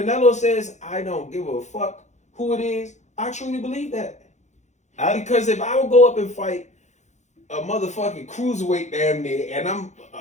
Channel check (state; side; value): late; right; 0.34 ms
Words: says I don't give a fuck who it is, I truly believe that. Because if I would go up and fight a motherfucking cruiserweight damn near, and I'm